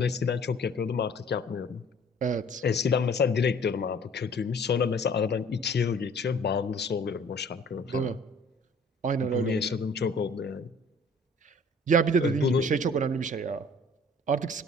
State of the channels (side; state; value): both; normal; correlation 0.52